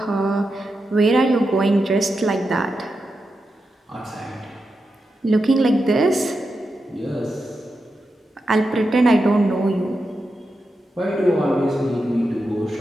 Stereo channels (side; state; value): both; normal; correlation 0.88